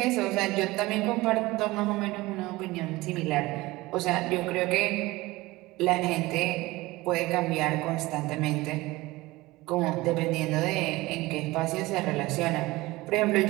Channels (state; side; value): quieter; left; 20.1 dB